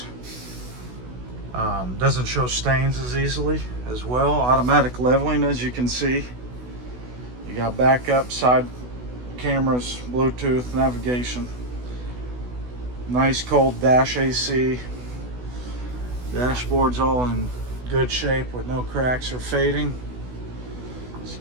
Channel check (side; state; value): left; late; 16 ms